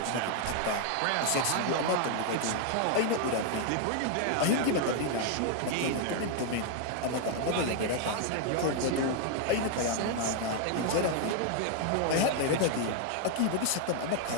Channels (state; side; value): different; both; correlation 0.00